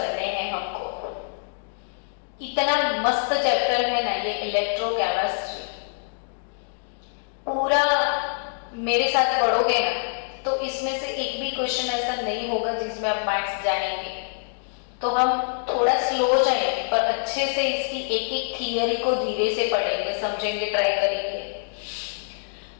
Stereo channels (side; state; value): right; silent; digital silence